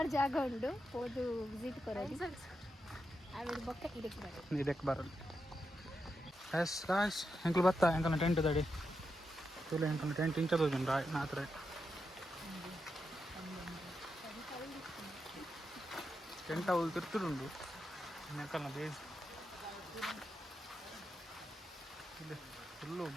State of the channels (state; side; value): normal; both; correlation 0.86